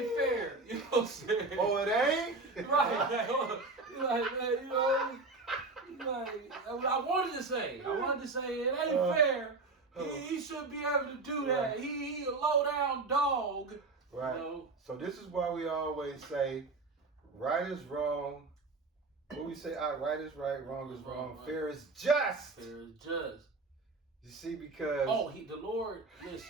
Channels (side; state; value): left; quieter; 3.6 dB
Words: fair. You know what I'm saying? Oh, it ain't? Right. Like, man, you know, like, I wanted to say. I wanted to say it ain't fair. He should be able to do that. Right. He a low down dog. Right. You know? So this is why we always say right is wrong. What we say, right is right, wrong is wrong. Right. Fair is just. Fair is just. You see, because The Lord,